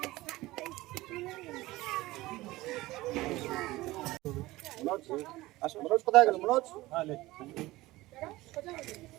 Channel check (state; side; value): quieter; left; 18.7 dB